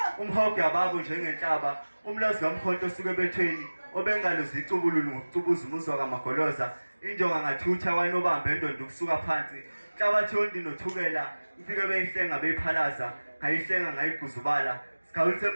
umhogo yababo njengenhlaba. umlazi kamkhonto osuke ebethweni obengalo zicubululu ngokucubuza umuzwa kamagoloza. injonga ngathutha kwanobamba endondo ukusuka phansi. Inhlabathi yondi nothukela ifike beyihlenga beyiphalaza, ngayihlenga ngayiguzubala. Sikhawulise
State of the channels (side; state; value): both; inverted; correlation -1.00